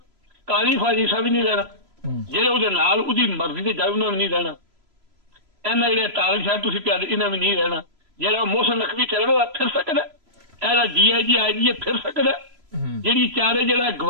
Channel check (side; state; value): left; late; 3.0 ms